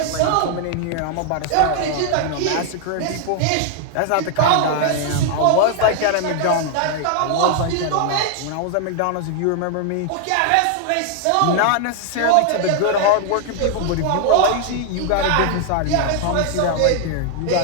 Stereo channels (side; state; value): both; different; correlation 0.00